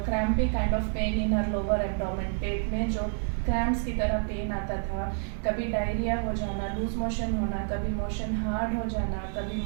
crampy kind of pain in her lower abdomen. पेट में जो cramps की तरह pen आता था, कभी डायरिया हो जाना, लूज मोशन होना, कभी मोशन हार्ड हो जाना, कभी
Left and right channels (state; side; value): silent; left; 59 dB below the other